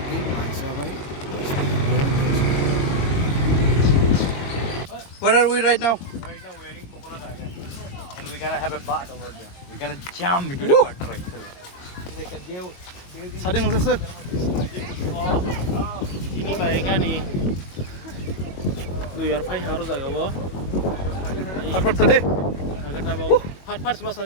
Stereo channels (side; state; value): right; late; 22 ms